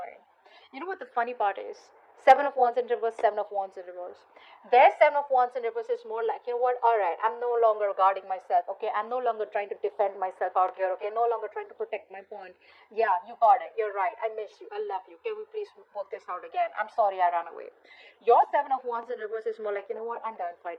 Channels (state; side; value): identical; both; correlation 1.00